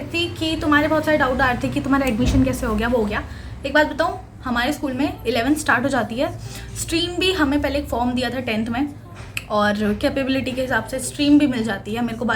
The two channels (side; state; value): both; identical; correlation 1.00